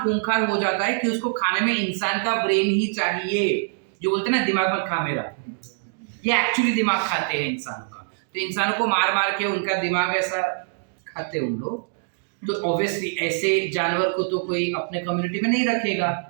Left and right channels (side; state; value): left; silent; digital silence